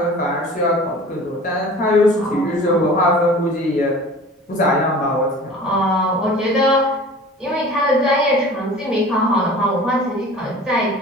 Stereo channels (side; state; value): both; normal; correlation 0.42